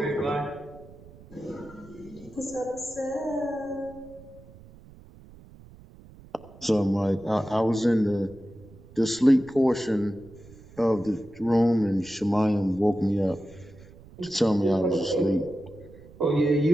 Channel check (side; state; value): right; noise; rumble, 21 dB below the sound